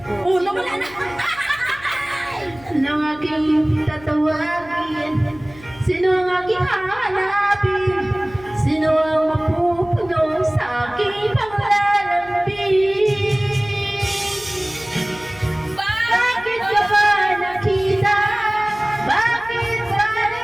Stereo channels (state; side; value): noise; left; hum, 21 dB below the sound